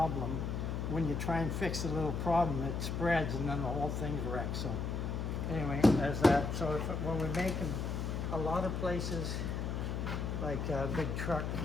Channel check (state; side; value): noise; left; hum, 2 dB below the sound